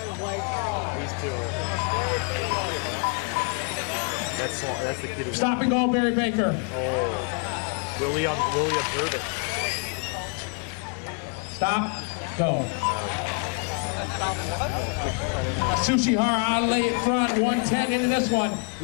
These two are... That's the kid who... Stop and go, Barry Baker. Oh. Will he observe it? Stop, go. Sushi Hara out late in front, 110 into this one.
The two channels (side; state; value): right; quieter; 38.0 dB